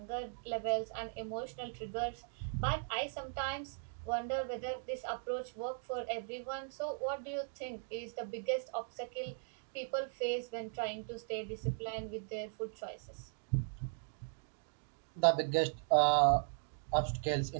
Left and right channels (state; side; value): silent; left; digital silence